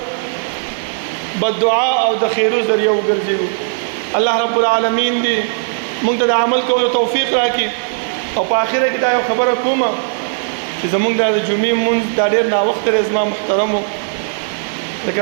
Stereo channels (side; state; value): left; silent; 62 dB below the other